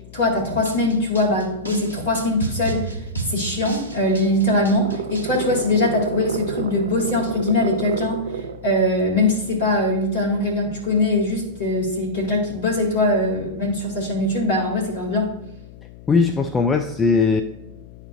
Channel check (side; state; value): left; noise; hum, 20 dB below the sound